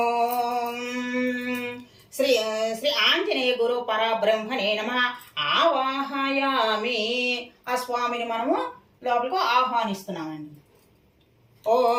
శ్రీ శ్రీ ఆంజనేయ గురు పరబ్రహ్మణే నమః ఆవాహయామి. ఆ స్వామిని మనము లోపలికి ఆహ్వానిస్తున్నామండి.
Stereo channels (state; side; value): identical; both; correlation 1.00